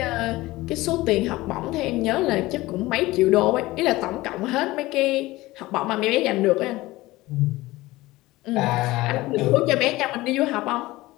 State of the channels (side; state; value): right; quieter; 18.9 dB